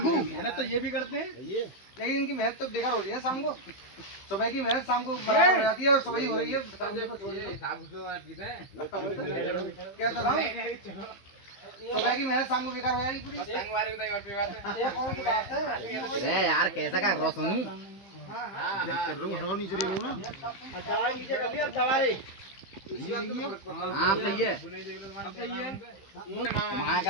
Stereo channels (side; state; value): right; late; 15 ms